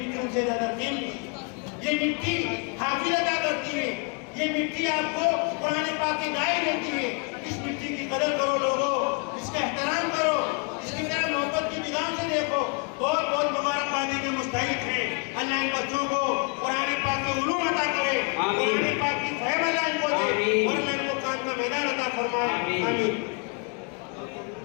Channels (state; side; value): quieter; right; 36.9 dB